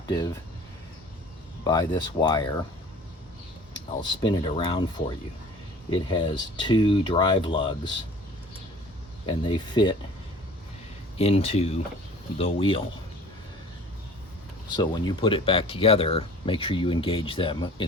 by this wire. I'll spin it around for you. It has two drive lugs, and they fit into the wheel. So when you put it back together, make sure you engage them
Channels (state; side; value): normal; both; correlation 0.46